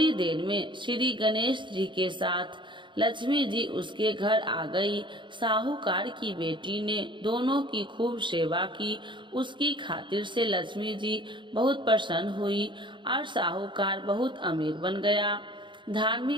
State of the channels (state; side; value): late; left; 0.23 ms